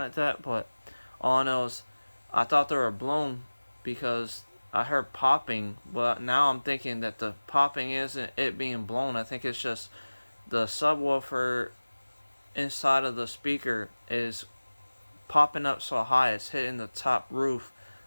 that. But all I know is I thought they were blown because I heard popping, but now I'm thinking that the popping isn't it being blown. I think it's just the subwoofer inside of the speaker is popping up so high it's hitting the top roof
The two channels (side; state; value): both; inverted; correlation -1.00